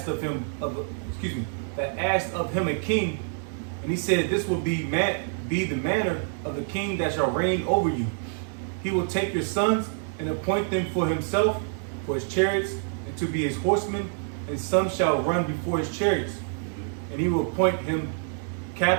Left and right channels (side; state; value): left; silent; 60 dB below the other